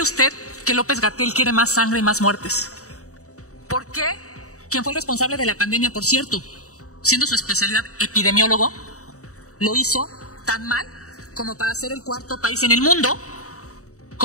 usted que López-Gatell quiere más sangre y más muertes? ¿Por qué quien fue el responsable de la pandemia, por cierto, siendo su especialidad epidemiólogo, lo hizo tan mal como para ser el 4º país en el mundo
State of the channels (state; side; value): late; right; 0.65 ms